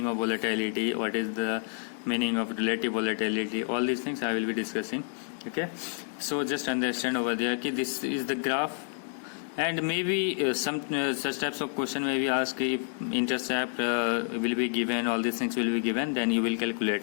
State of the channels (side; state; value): right; silent; 58 dB below the other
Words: of volatility, what is the meaning of relative volatility, all these things I will be discussing. Okay, so just understand over there कि this is the graph, and maybe some such types of question may be asked if intercept will be given, all these things will be given, then you will calculate